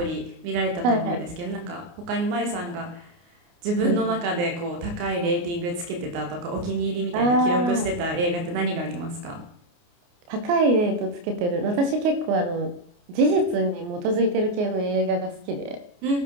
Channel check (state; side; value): late; left; 29 ms